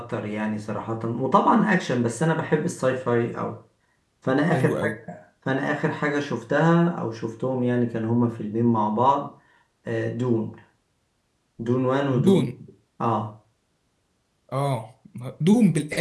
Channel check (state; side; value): identical; both; correlation 1.00